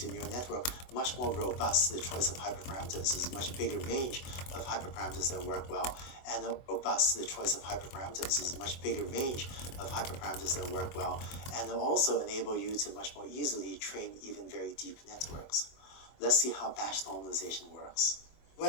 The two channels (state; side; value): late; right; 24 ms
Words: your neural network much more robust to the choice of hyperparameters. There's a much bigger range of hyperparameters that work well, and robust to the choice of hyperparameters. There's a much bigger range of hyperparameters that work well, and it'll also enable you to much more easily train even very deep networks. Let's see how batch normalization works.